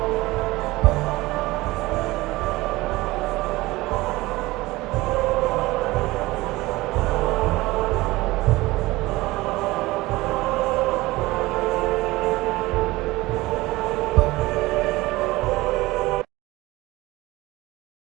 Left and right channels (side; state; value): left; quieter; 19.7 dB